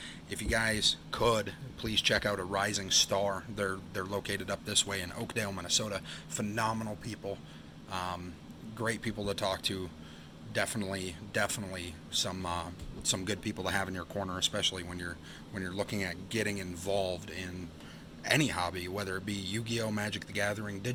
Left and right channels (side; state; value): both; identical; correlation 1.00